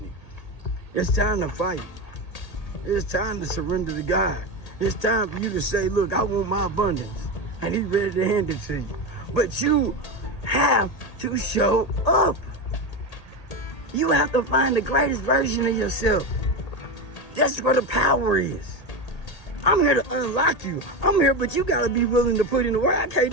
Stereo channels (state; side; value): late; right; 1.8 ms